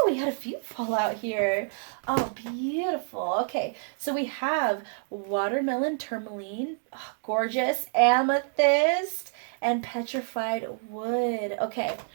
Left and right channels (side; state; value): left; silent; digital silence